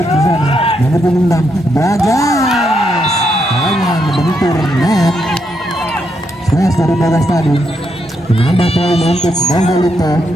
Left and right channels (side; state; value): both; normal; correlation 0.79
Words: di sana. Nomor punggung 6. Bagas. Hanya membentur net. Smash dari Bagas tadi. Menambah poin untuk Donggolito.